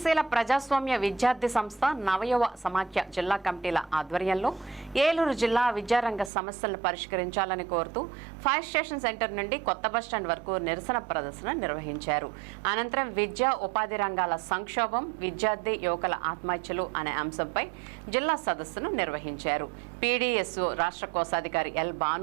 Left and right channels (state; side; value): drops out; left; at 6.3 s